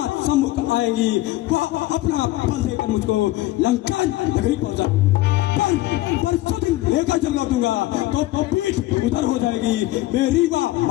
सम्मुख आएंगी, वह अपना बल देकर मुझको लंका नगरी पहुंचा। पर सुदिन लेकर जब लौटूंगा तो पीठ उधर हो जाएगी, मेरी वह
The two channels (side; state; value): right; quieter; 17.0 dB